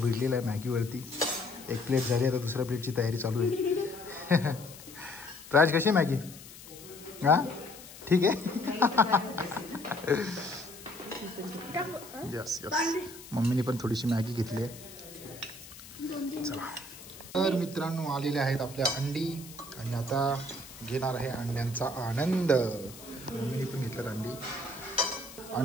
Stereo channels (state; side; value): noise; left; hiss, 17 dB below the sound